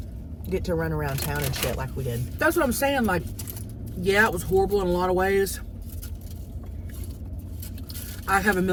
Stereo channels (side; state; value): both; identical; correlation 1.00